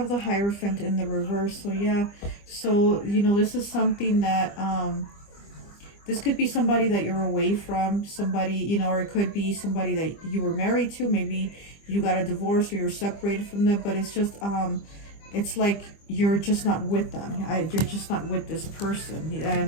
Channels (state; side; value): late; right; 25 ms